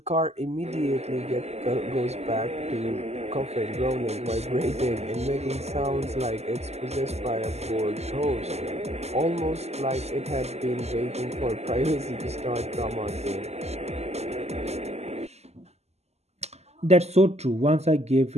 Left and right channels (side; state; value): left; late; 0.31 ms